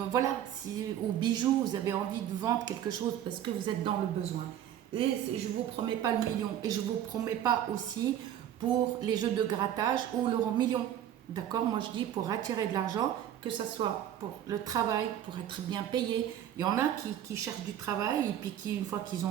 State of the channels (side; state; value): left; quieter; 10.8 dB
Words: voilà, si, ou bijoux, vous avez envie de vendre quelque chose parce que vous êtes dans le besoin. Et je ne vous promets pas le million et je ne vous promets pas aussi pour les jeux de grattage ou l'euro million. D'accord? Moi je dis pour attirer de l'argent, que ce soit pour le travail, pour être bien payé. Il y en a qui cherchent du travail et puis qui, une fois qu'ils